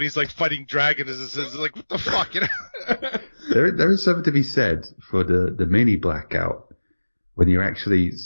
he's like fighting dragons. It's like, what the fuck, There is something to be said for the mini blackout when you're actually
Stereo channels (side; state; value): both; inverted; correlation -1.00